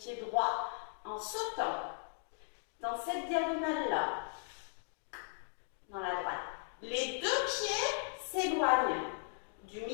droit en sautant dans cette diagonale-là, dans la droite. Les deux pieds s'éloignent du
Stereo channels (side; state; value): right; silent; digital silence